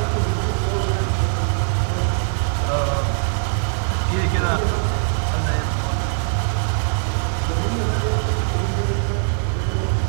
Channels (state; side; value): silent; left; digital silence